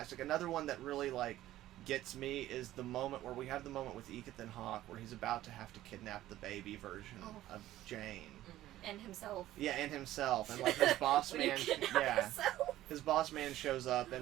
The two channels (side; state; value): left; quieter; 14.4 dB